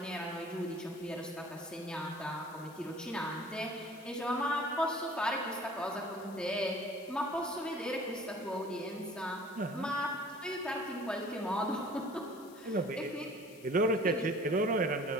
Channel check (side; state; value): left; noise; hiss, 22 dB below the sound